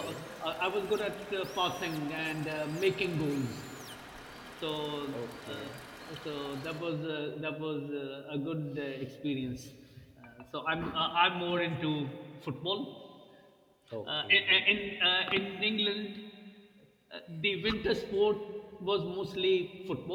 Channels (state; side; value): identical; both; correlation 1.00